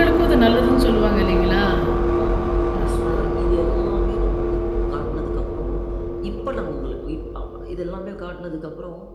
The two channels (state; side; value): identical; both; correlation 1.00